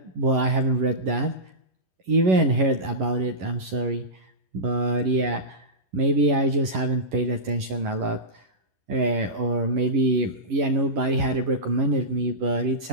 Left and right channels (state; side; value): late; left; 11 ms